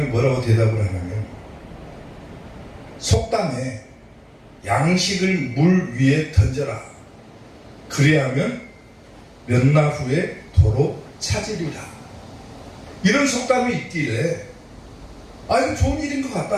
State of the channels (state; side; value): identical; both; correlation 1.00